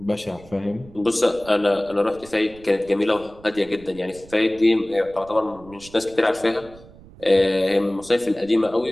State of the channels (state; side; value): noise; right; rumble, 21 dB below the sound